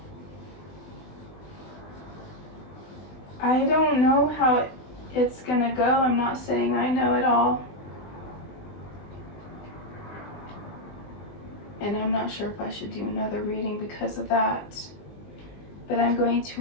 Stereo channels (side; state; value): right; late; 20 ms